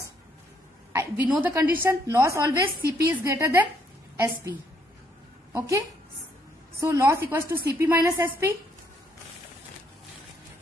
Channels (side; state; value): both; normal; correlation 0.71